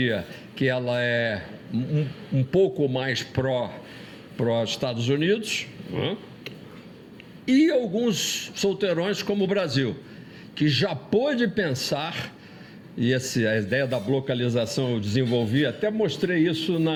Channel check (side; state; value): both; identical; correlation 1.00